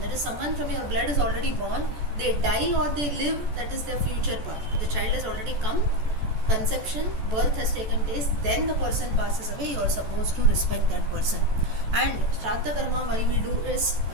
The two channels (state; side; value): late; left; 14 ms